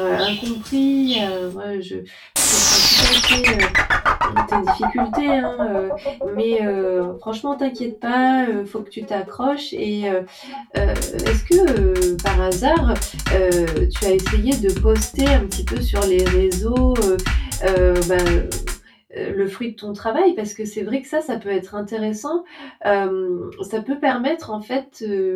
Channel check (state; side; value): identical; both; correlation 1.00